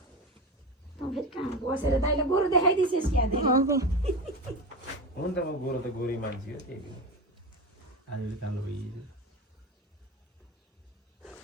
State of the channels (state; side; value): normal; both; correlation 0.23